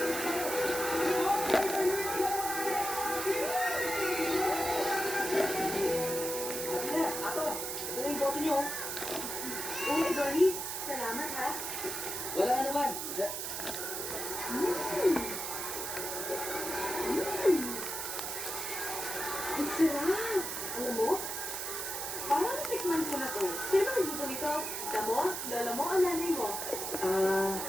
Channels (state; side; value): noise; right; hiss, 4 dB below the sound